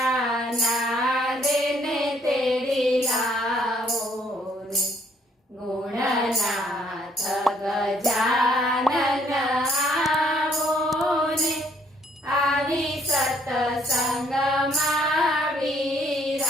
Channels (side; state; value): both; normal; correlation 0.67